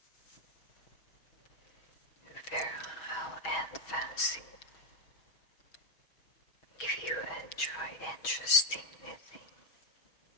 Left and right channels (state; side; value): late; right; 6.2 ms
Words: Virile and fancy. If you enjoy interesting knitting,